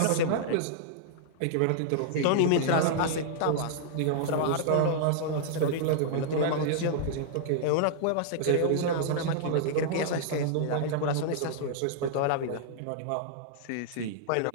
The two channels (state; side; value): different; both; correlation -0.01